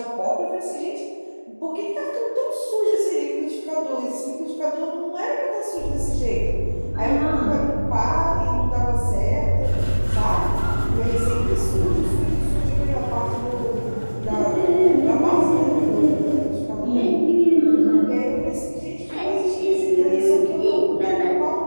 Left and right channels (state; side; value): inverted; both; correlation -1.00